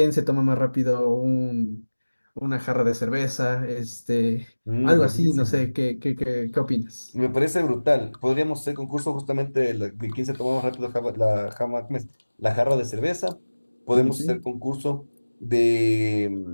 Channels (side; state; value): both; inverted; correlation -1.00